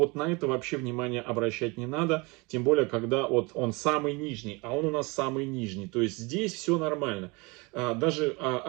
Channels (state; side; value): quieter; left; 26.9 dB